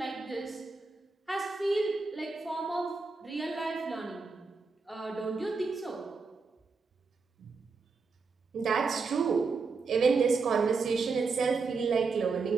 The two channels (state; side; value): quieter; left; 4.5 dB